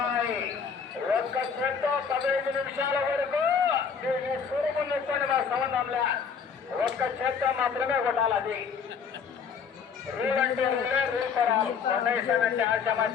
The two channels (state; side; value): quieter; right; 6.3 dB